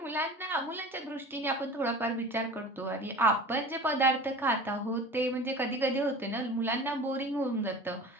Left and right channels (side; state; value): both; normal; correlation 0.38